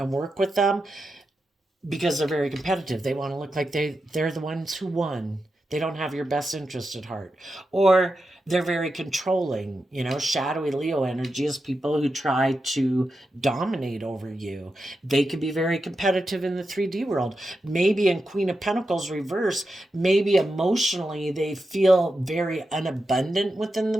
work with them because they're very competitive. They want to look like they're the ones who won. They don't have your best interest at heart. Or they're very controlling. You know, shadowy Leo energy is people who try to dominate over you. They could be very competitive in the 3D world. Maybe in Queen of Pentacles reverse, maybe emotionally they feel very unabundant within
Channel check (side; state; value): both; normal; correlation 0.89